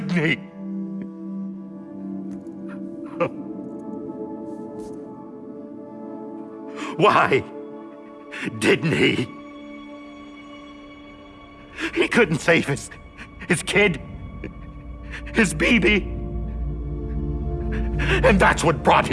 he? Why didn't he? He couldn't save his kid, his baby. And that's what brought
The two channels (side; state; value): both; identical; correlation 1.00